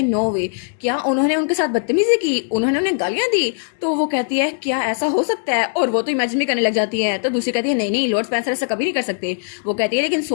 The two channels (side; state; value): right; silent; digital silence